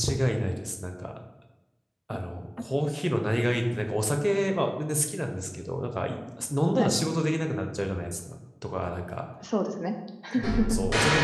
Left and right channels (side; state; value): both; identical; correlation 1.00